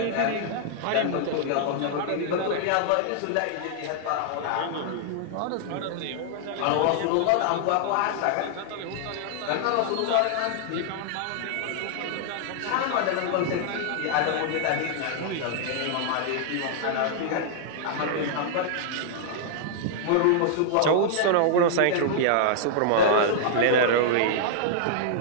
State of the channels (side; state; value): both; different; correlation -0.01